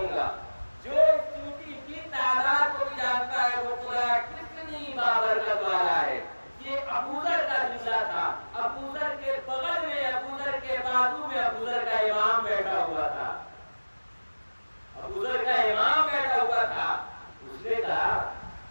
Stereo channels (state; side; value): inverted; both; correlation -1.00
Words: گا، جو اس چینٹی کی تعداد کو بھی جانتا ہے وہ خدا کتنی بابرکت والا ہے۔ یہ ابو ذر کا جملہ تھا، ابو ذر کے بغل میں، ابو ذر کے بازو میں ابو ذر کا امام بیٹھا ہوا تھا، اس نے کہا،